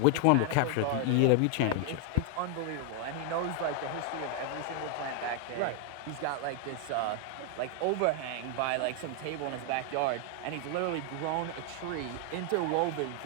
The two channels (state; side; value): different; both; correlation 0.00